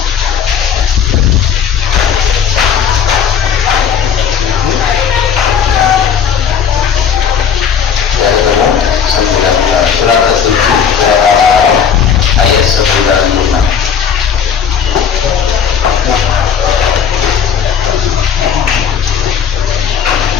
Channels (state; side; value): quieter; right; 7.5 dB